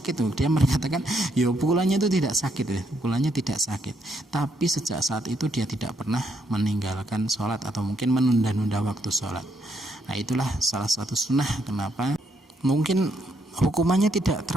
tuh, dia mengatakan ya pukulannya itu tidak sakit, tapi sejak saat itu dia tidak pernah meninggalkan sholat atau mungkin menunda-nunda waktu sholat. Nah itulah salah satu sunnah kenapa mungkin hukumannya tidak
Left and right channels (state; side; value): normal; both; correlation 0.75